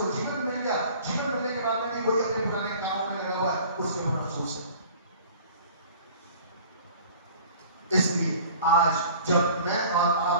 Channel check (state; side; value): inverted; both; correlation -0.47